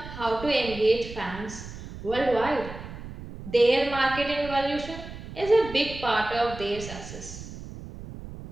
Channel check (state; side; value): noise; right; rumble, 12 dB below the sound